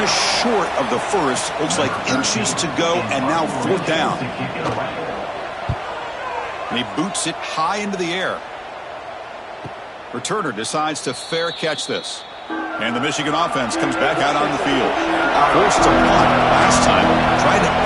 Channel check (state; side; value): identical; both; correlation 1.00